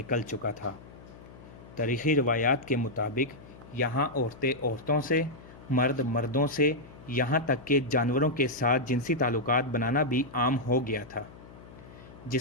چکا تھا۔ تاریخی روایات کے مطابق یہاں عورتیں عورتوں سے، مرد مردوں سے، یہاں تک کہ جانوروں کے ساتھ جنسی تعلقات بنانا بھی عام ہو گیا تھا۔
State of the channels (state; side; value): noise; left; hum, 19 dB below the sound